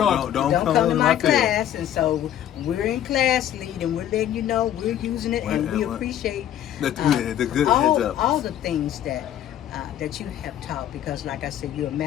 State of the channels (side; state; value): right; quieter; 11.2 dB